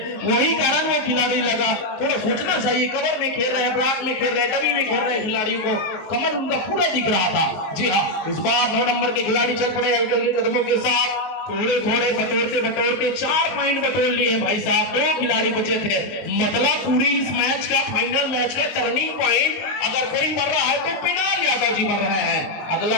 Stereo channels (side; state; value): right; late; 19 ms